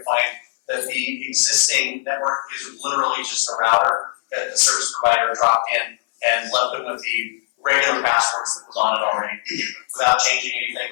to find that the existing network is literally just a router that the service provider dropped in and left them with the regular passwords that was on it already, without changing anything,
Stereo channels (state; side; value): silent; right; 62 dB below the other